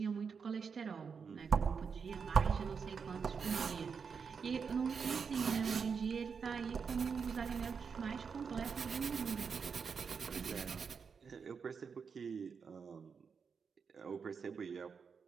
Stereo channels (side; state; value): left; quieter; 5.9 dB